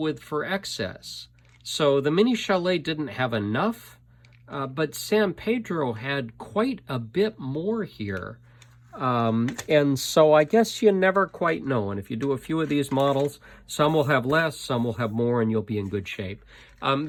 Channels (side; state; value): both; identical; correlation 1.00